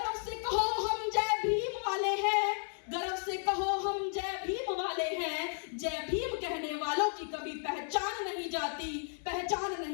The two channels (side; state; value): right; silent; 55 dB below the other